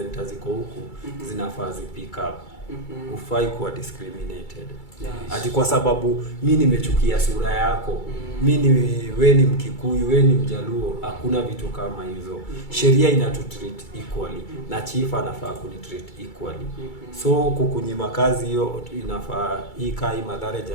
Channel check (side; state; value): right; late; 2.3 ms